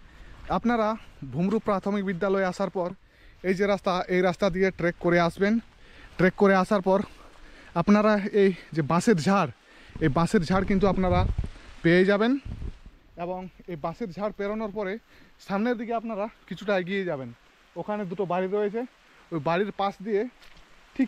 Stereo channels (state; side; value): identical; both; correlation 1.00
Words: আপনারা ভুমরু প্রাথমিক বিদ্যালয়ে আসার পর এই যে রাস্তা, এই রাস্তা দিয়ে ট্রেক করে আসবেন। ট্রেক করে আসার পর আপনারা এই যে বাঁশের ঝাড়, এই বাঁশের ঝাড় কিন্তু আপনারা পেয়ে যাবেন, এবং এই বাঁশের ঝাড় পেরোনোর পরে সামনের দিকে আপনারা কিছুটা এগিয়ে যাবেন। ওখানে দুটো বাড়ি রয়েছে, ওই বাড়ির পাশ দিয়ে